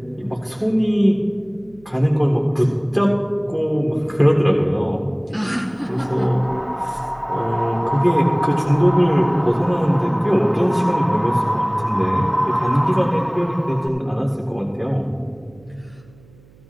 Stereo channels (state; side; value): noise; right; hum, 27 dB below the sound